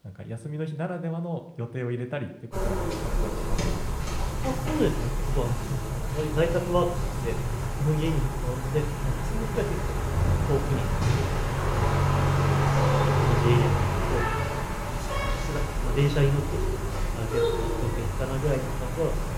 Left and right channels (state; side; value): identical; both; correlation 1.00